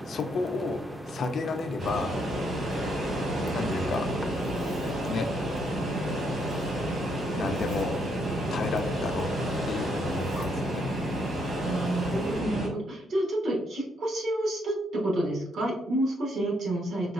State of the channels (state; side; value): normal; both; correlation 0.74